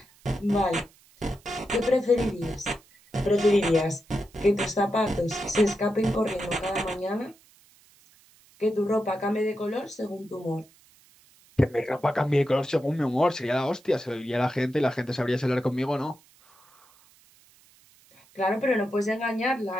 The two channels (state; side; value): noise; right; hiss, 29 dB below the sound